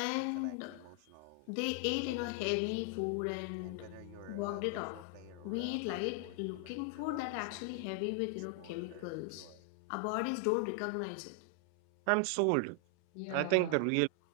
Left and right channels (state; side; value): different; both; correlation 0.00